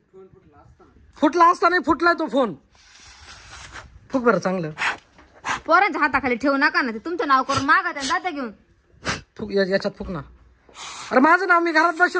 फुटला असता नाही फुटलाय तो फोन. फुक बरं चांगलं. पोरांच्या हाताखाली ठेवू नका ना, ते तुमचं नाव करून मागा त्या जाता घेऊन. फुक याच्यात फुक ना. अरे माझं नाव, मी घरात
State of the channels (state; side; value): identical; both; correlation 1.00